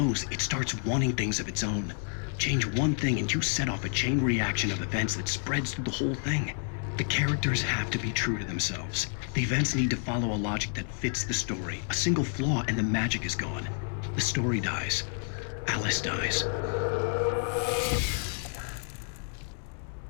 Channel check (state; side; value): silent; right; 58 dB below the other